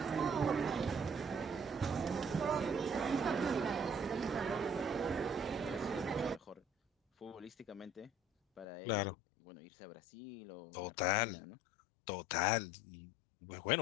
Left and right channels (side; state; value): right; drops out; at 8.7 s